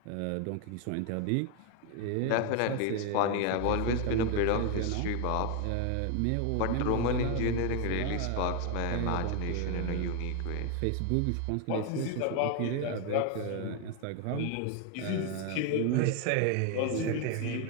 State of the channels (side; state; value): both; different; correlation 0.01